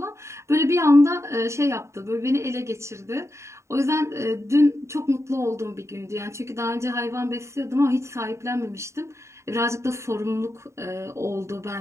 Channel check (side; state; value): left; late; 0.14 ms